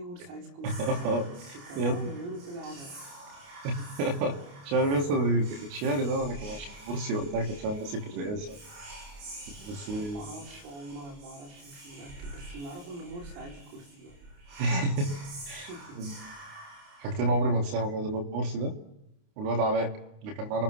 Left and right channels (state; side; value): late; left; 29 ms